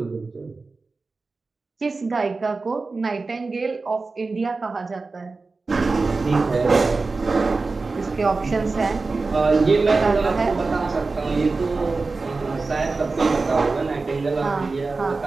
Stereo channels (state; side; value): quieter; left; 3.9 dB